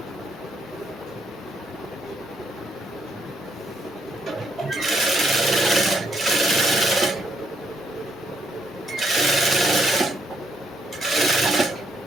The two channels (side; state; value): both; normal; correlation 0.73